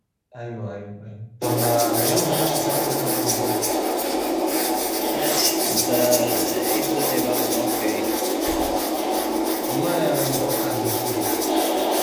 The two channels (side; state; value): both; identical; correlation 1.00